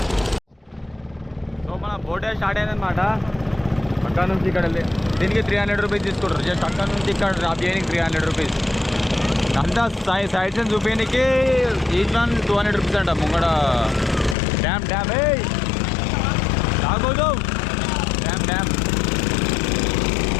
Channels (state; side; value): drops out; right; at 14.4 s